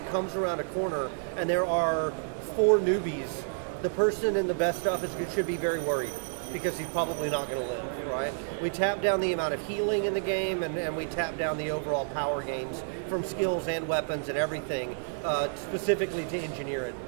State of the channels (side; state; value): left; silent; digital silence